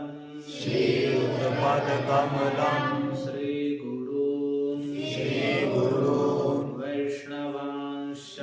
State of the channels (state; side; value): identical; both; correlation 1.00